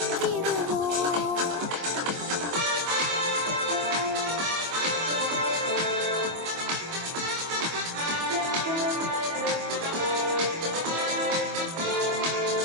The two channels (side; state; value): left; late; 25 ms